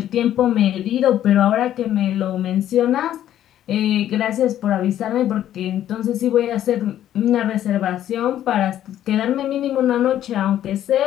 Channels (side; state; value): right; quieter; 11.6 dB